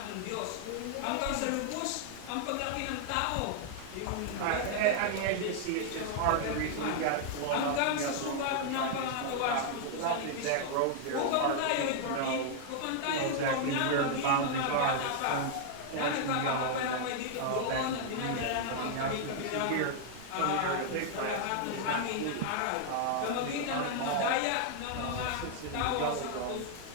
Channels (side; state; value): both; different; correlation 0.00